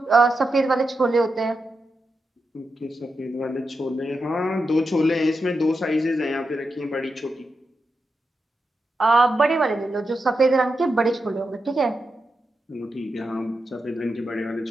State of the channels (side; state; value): both; normal; correlation 0.88